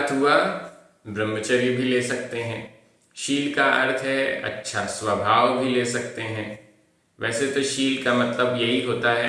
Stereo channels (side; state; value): both; identical; correlation 1.00